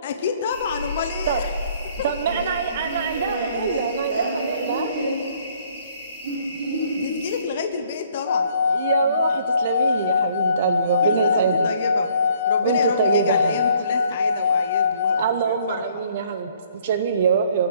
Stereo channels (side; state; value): both; inverted; correlation -0.62